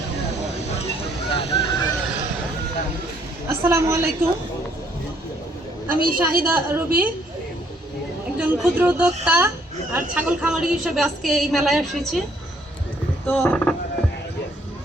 আলাইকুম। আমি শাহিদা রবি, একজন ক্ষুদ্র উদ্যোক্তা আর ছাগল খামারি হিসেবে আজকে এই মেলায় এসেছি। তো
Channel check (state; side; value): normal; both; correlation 0.66